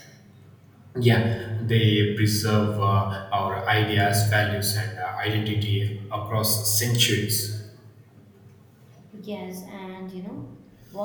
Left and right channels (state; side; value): identical; both; correlation 1.00